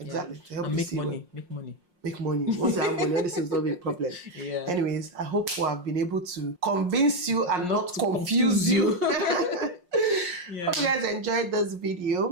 to help and you make see money. Make money. Make money. Once you have money, all this is not be a problem. Yeah. Anyways, I hope we have been able to convince you and not confuse you. Yeah. Hope you guys enjoyed this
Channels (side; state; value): left; late; 5.6 ms